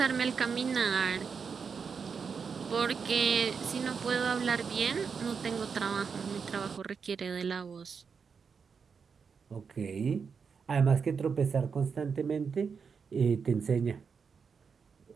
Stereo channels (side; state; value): left; quieter; 5.9 dB